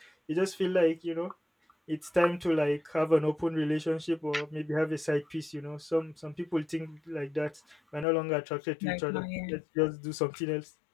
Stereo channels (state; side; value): drops out; right; at 8.1 s